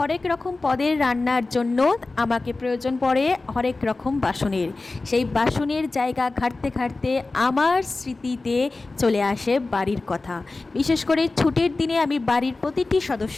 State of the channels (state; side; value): quieter; right; 3.4 dB